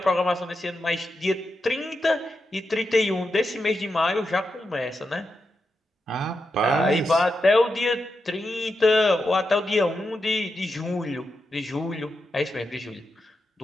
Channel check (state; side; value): normal; both; correlation 0.87